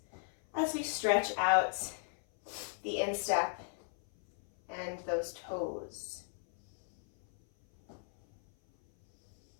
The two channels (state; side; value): silent; right; 54 dB below the other